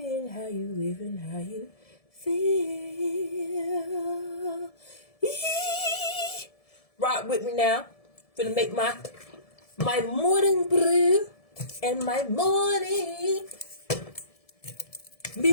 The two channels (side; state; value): right; late; 1.7 ms